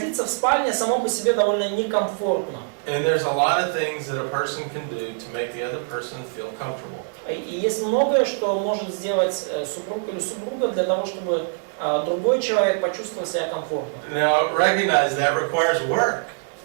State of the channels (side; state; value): left; silent; digital silence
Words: в спальне само по себе довольно некомфортно. And there's a lot of things that a person can do to make the other person feel comfortable. И есть многое, что может сделать супруг или супруга для того, чтобы другой человек почувствовал себя комфортно. Now, recognize that requires work.